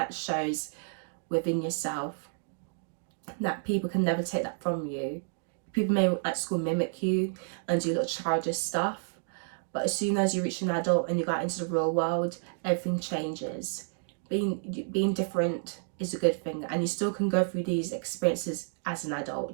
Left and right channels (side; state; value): left; silent; digital silence